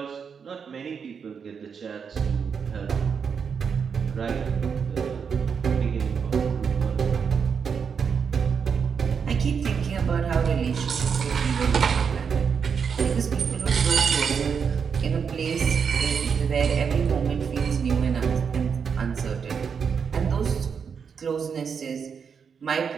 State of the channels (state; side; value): quieter; left; 6.4 dB